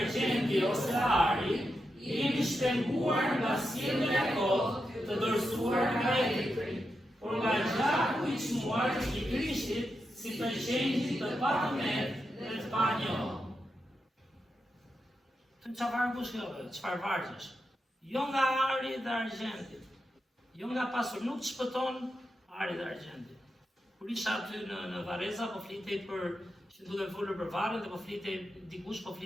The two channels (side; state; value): both; normal; correlation 0.87